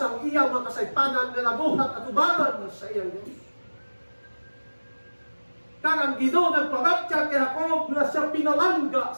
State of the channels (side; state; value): both; inverted; correlation -1.00